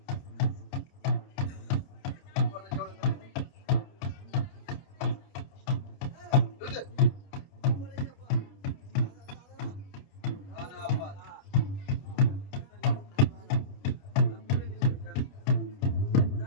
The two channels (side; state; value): right; late; 29 ms